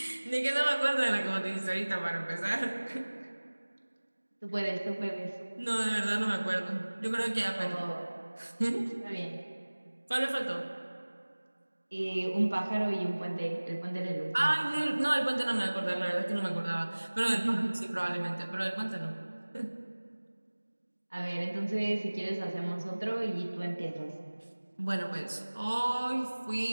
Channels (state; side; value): inverted; both; correlation -1.00